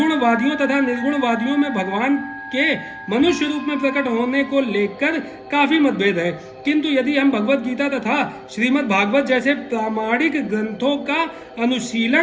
तथा निर्गुणवादियों में भगवान के मनुष्य रूप में प्रकट होने को लेकर काफी मतभेद है, किंतु यदि हम भगवत गीता तथा श्रीमद् भागवत जैसे प्रामाणिक ग्रंथों का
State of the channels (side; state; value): both; identical; correlation 1.00